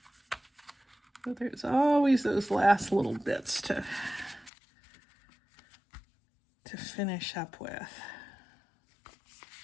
But there's always those last little bits to finish up with.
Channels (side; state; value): right; drops out; at 4.5 s